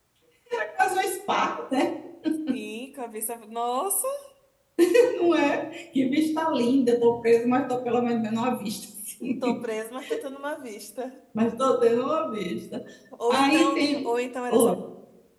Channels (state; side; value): identical; both; correlation 1.00